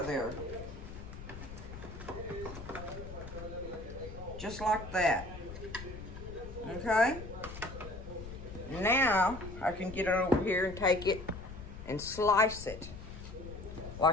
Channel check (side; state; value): left; noise; rumble, 11 dB below the sound